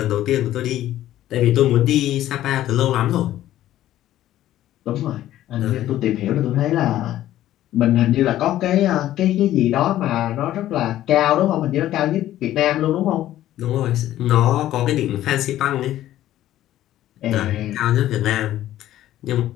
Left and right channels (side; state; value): right; quieter; 13.4 dB